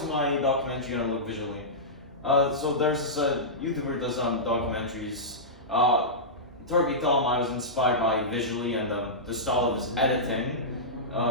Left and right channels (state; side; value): normal; both; correlation -0.15